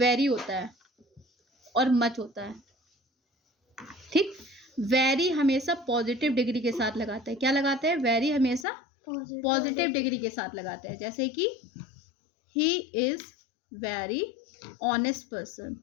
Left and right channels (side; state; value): right; drops out; at 8.7 s